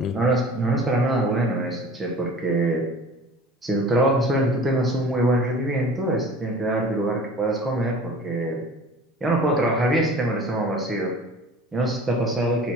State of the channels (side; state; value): both; normal; correlation 0.43